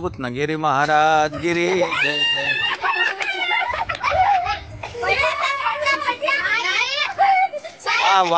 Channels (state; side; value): identical; both; correlation 1.00